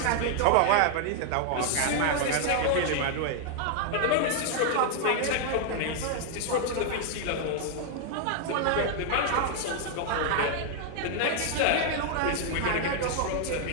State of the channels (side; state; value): both; different; correlation 0.00